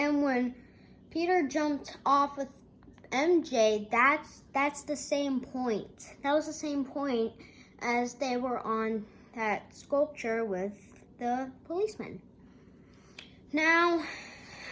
Peter jumped off with MJ, that's the same point. That was the same point as they were on that sculpture with the policeman. Now,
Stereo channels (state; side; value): identical; both; correlation 1.00